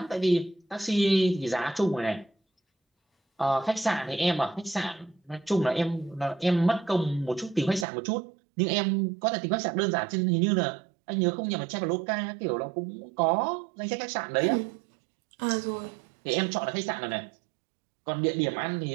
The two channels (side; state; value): left; drops out; at 7.9 s